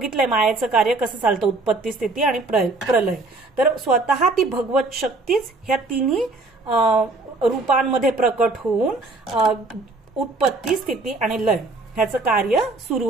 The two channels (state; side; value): quieter; left; 3.3 dB